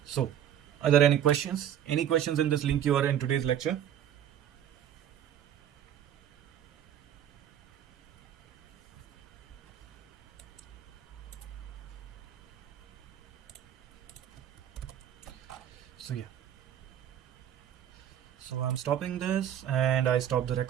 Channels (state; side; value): quieter; left; 10.2 dB